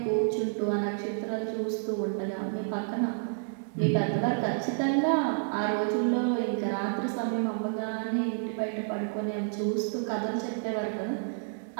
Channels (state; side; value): silent; left; digital silence